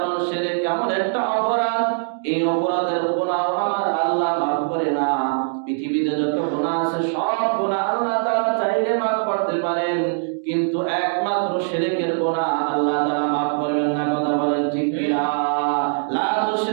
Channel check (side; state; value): left; silent; digital silence